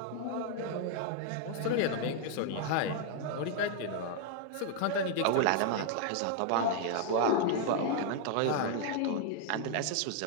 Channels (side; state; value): both; different; correlation 0.00